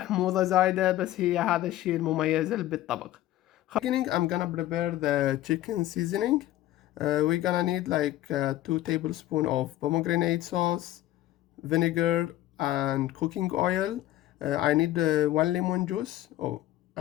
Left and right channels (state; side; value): quieter; right; 14.5 dB